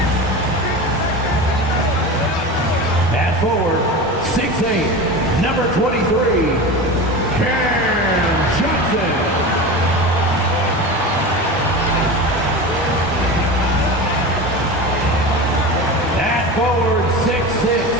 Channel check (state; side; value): normal; both; correlation 0.28